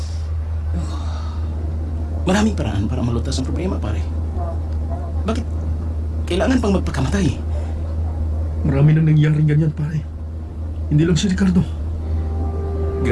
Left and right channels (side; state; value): both; identical; correlation 1.00